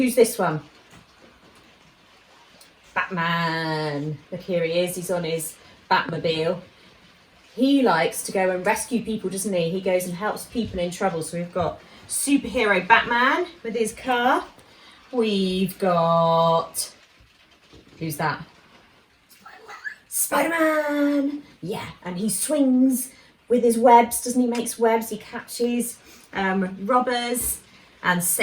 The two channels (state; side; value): identical; both; correlation 1.00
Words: this one? Batman. Look, here he is. He's on his Batmobile. He likes to go and rescue people, doesn't he? He goes and helps people in trouble. So we've got superhero Batman with his car. We've got, who's that? Spider-Man. Yeah, and he swings with his webs, doesn't he? Makes webs. He catches robbers and